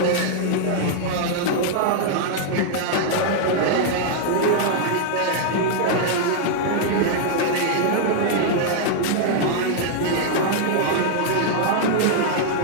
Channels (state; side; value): different; both; correlation -0.01